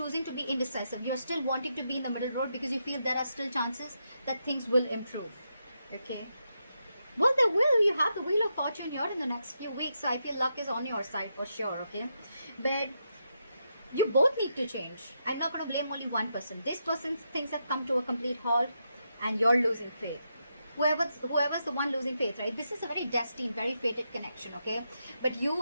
to be indecisive. You're still wanting to be in the middle road because you feel there are still chances that things will improve, okay? Well, they will. You have the Wheel of Fortune here in the next few weeks, so I feel luck is on your side for sure, okay? But you both need to change. I'm not going to blame only one person. This person's things have come to a complete halt and you're losing faith. Whoever's the one losing faith, right? This is a very destined, very fated connection, okay? But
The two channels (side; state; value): both; inverted; correlation -0.83